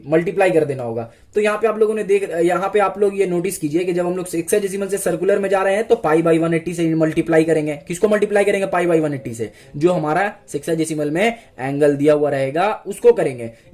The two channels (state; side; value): identical; both; correlation 1.00